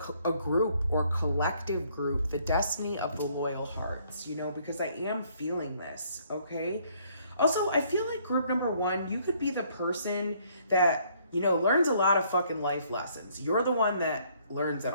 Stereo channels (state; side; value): inverted; both; correlation -0.65